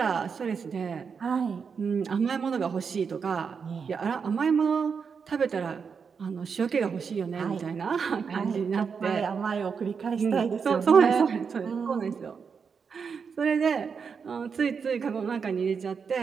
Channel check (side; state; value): left; quieter; 6.0 dB